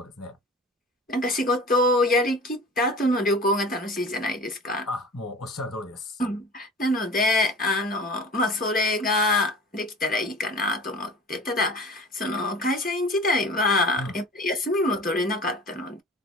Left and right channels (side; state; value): both; normal; correlation 0.40